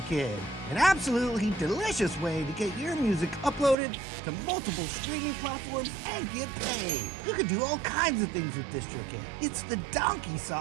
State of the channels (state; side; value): drops out; left; at 3.8 s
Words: An absolutely delicious way to get your music uploaded to multiple streaming platforms and get paid. You can do all kinds of things with Distrokid. It's the donkey